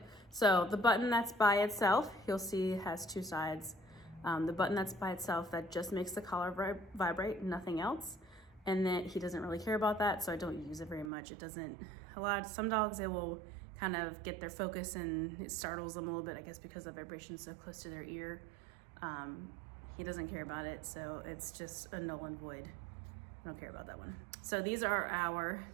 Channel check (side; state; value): left; drops out; at 11.1 s